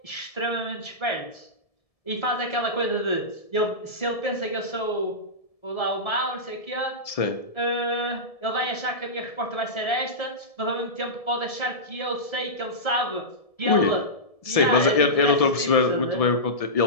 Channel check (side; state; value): right; late; 1.7 ms